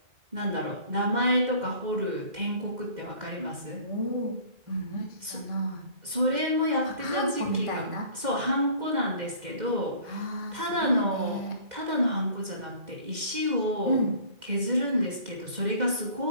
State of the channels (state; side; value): late; left; 2.1 ms